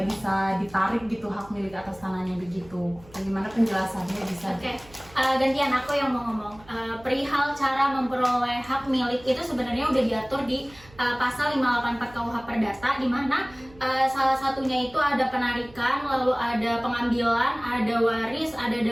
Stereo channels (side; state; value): right; noise; hum, 23 dB below the sound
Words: bisa ditarik gitu hak milik atas tanahnya begitu? Bagaimana penjelasannya bisa? Oke, gantian aku yang mau ngomong. Perihal cara memperoleh hak milik itu sebenarnya udah diatur di pasal 584 KUH Perdata, di mana salah satunya itu ada penarikan, lalu ada pengambilan, ada waris, ada